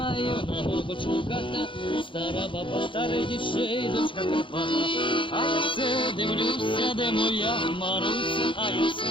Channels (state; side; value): late; right; 0.25 ms